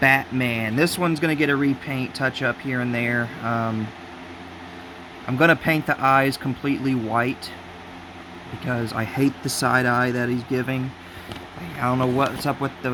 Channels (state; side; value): identical; both; correlation 1.00